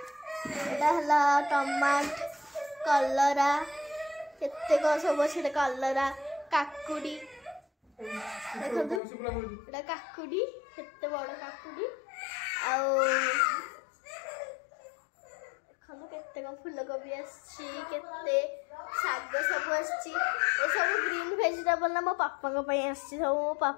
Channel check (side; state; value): right; drops out; at 9.0 s